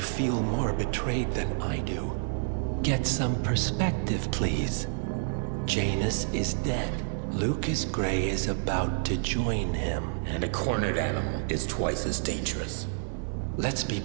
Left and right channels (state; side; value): silent; left; 59 dB below the other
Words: feel more betrayed than I do? Get some perspective, please. Janus is dead. Lucas Gray is about to join him. And a cornered animal is twice as dangerous. Let's be